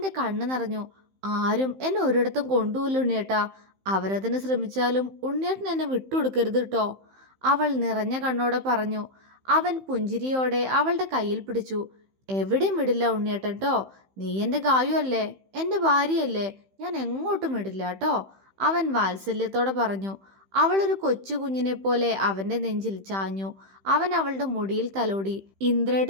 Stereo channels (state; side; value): late; left; 15 ms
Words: കണ്ണ് നിറഞ്ഞു. ആരും എന്നെ ഒരിടത്തും കൊണ്ടുപോയില്ല ഉണ്ണിയേട്ടാ. അവരതിന് ശ്രമിച്ചാലും ഉണ്ണിയേട്ടൻ എന്നെ വിട്ടുകൊടുക്കരുത് കേട്ടോ, അവൾ നിറഞ്ഞ കണ്ണോടെ പറഞ്ഞു. അവൻ പുഞ്ചിരിയോടെ അവളുടെ കയ്യിൽ പിടിച്ചു. എവിടെയും വിടില്ല ഉണ്ണിയേട്ടൻ ട്ടോ. നീ എൻ്റെ ഗായു അല്ലേ, എൻ്റെ ഭാര്യയല്ലേ. ഞാൻ എങ്ങോട്ടും വിടില്ല കേട്ടോ, അവൻ വാത്സല്യത്തോടെ പറഞ്ഞു. അവളൊരു കൊച്ചു കുഞ്ഞിനെ പോലെ അവന്റെ നെഞ്ചിൽ ചാഞ്ഞു. അവൻ അവളുടെ മുടിയിൽ തലോടി.